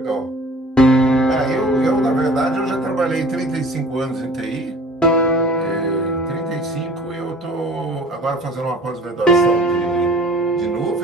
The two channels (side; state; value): both; normal; correlation 0.47